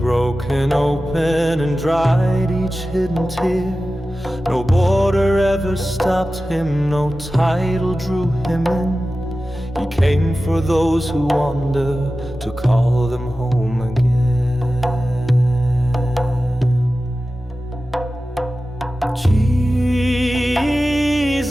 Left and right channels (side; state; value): both; normal; correlation 0.95